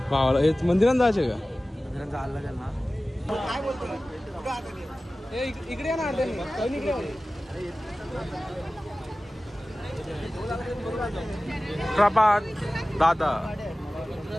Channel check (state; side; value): normal; both; correlation 0.97